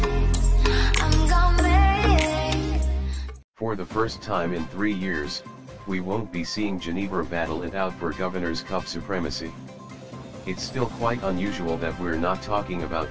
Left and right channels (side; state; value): both; identical; correlation 1.00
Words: I'm gonna make. For the first time in 3 years, we won't be seeing Ginebra battle it out for Governor's Cup supremacy. It's still quite unusual that we're not talking about